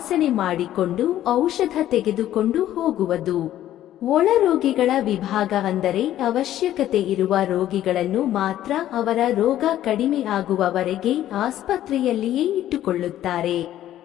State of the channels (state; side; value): quieter; right; 12.6 dB